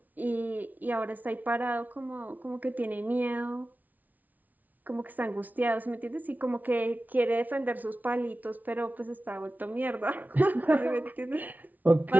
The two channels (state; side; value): late; left; 0.078 ms